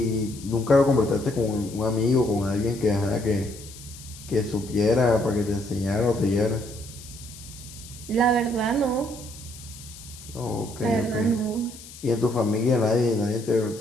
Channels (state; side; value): noise; left; hiss, 17 dB below the sound